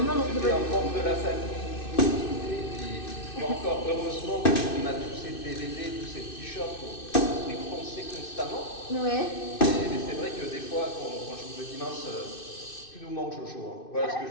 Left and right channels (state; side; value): late; right; 2.6 ms